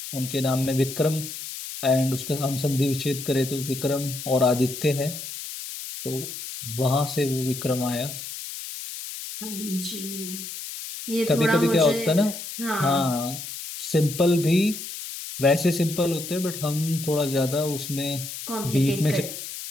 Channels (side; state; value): left; noise; hiss, 9 dB below the sound